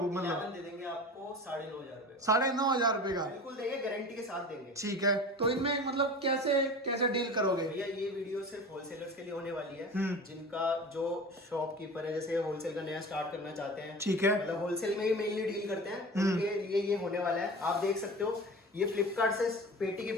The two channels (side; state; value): both; normal; correlation 0.35